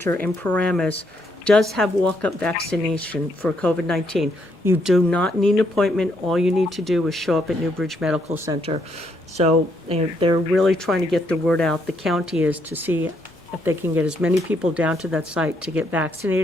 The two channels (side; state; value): both; normal; correlation 0.74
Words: in Paramus does have walk-up vaccination for COVID-19. You do not need an appointment. All you need to do is show up at Newbridge Medical Center. So they're really trying to get the word out. The county is to see if they can get as many people down to that site to get